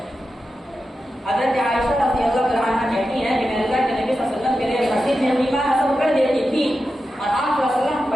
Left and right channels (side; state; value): both; normal; correlation 0.91